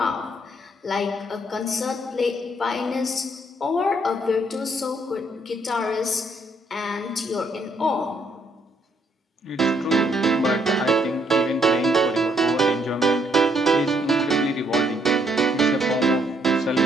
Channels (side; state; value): both; normal; correlation 0.71